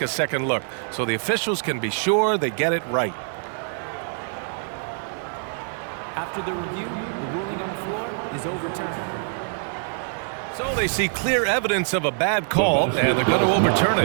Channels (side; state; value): left; silent; digital silence